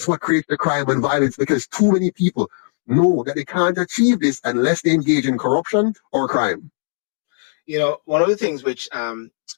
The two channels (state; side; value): silent; right; digital silence